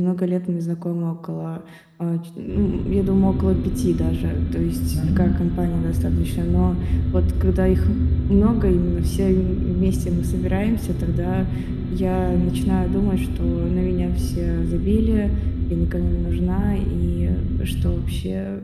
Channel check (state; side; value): identical; both; correlation 1.00